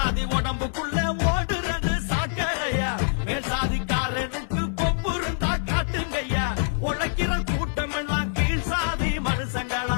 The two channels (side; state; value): right; silent; 61 dB below the other